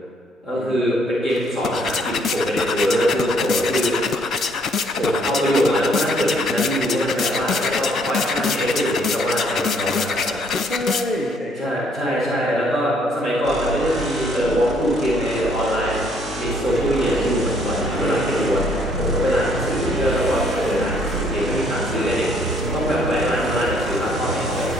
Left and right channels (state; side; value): normal; both; correlation 0.65